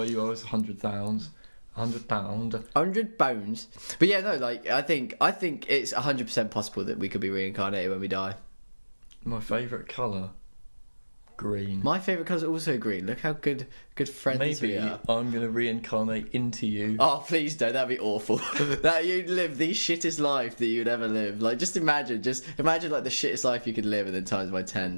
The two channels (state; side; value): inverted; both; correlation -1.00